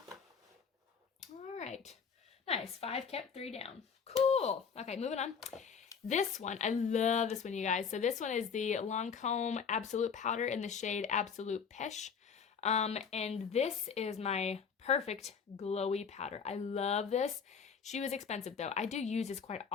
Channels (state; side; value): quieter; right; 6.3 dB